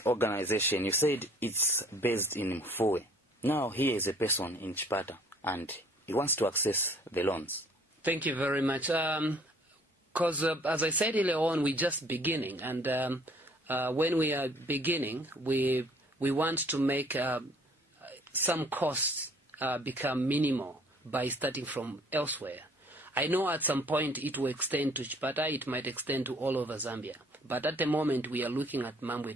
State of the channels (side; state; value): both; normal; correlation 0.56